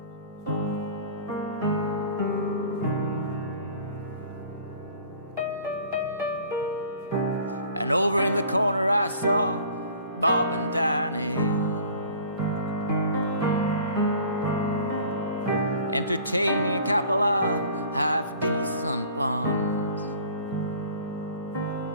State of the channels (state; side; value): inverted; both; correlation -0.47